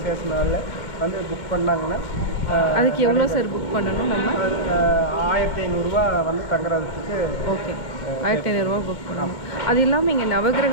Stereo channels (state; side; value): late; right; 2.2 ms